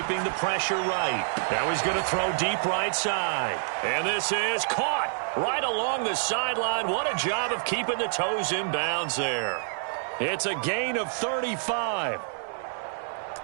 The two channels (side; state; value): left; silent; digital silence